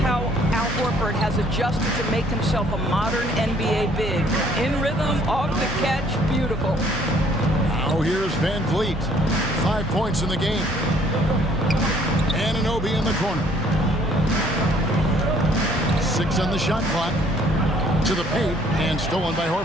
Al Horford has adjusted to make himself a modern NBA big. In rhythm, off the catch, beautiful. Now here's Van Vliet. 5 points in the game. Anunoby in the corner. 6 on the shot clock. To the paint and stolen by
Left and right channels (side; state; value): both; normal; correlation 0.60